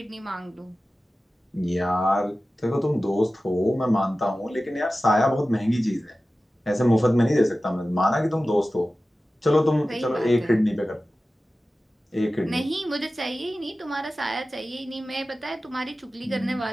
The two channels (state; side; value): normal; both; correlation 0.95